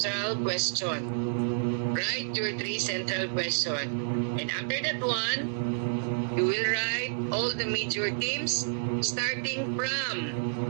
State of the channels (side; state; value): left; silent; digital silence